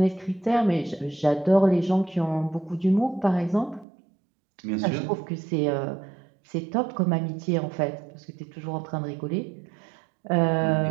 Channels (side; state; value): left; drops out; at 3.9 s